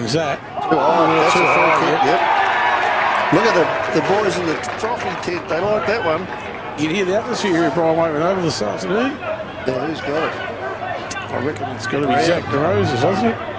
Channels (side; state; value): both; identical; correlation 1.00